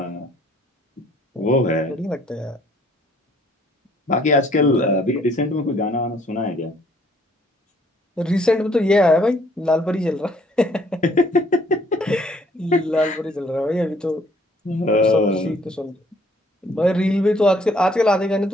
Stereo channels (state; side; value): normal; both; correlation 0.62